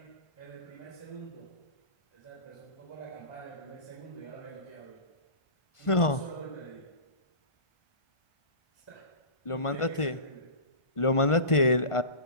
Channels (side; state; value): right; late; 1.5 ms